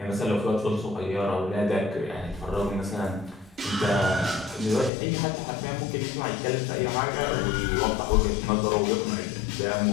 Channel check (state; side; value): drops out; right; at 4.9 s